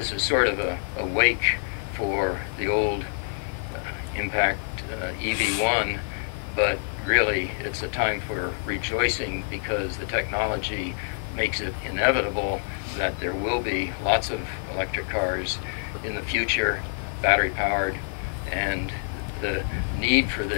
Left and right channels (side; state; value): right; silent; digital silence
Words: is sort of a wake for the old impact EV1, but really it's a time for rejoicing because the technology makes it inevitable that there will be lots of electric cars in the future, battery powered, and the need for